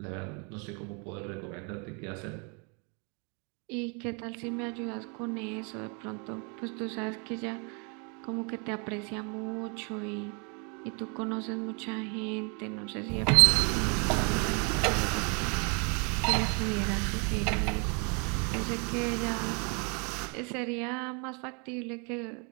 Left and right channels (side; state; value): left; quieter; 35.3 dB